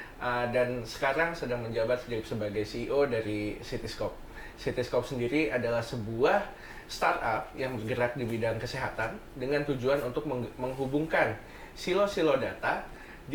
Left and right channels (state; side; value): identical; both; correlation 1.00